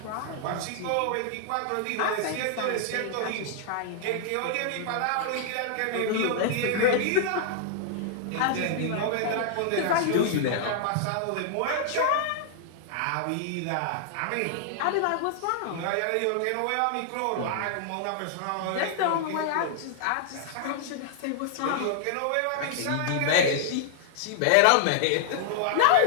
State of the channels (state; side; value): different; both; correlation -0.01